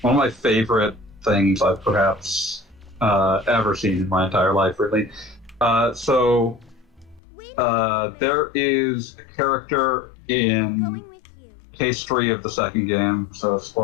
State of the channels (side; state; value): right; drops out; at 7.2 s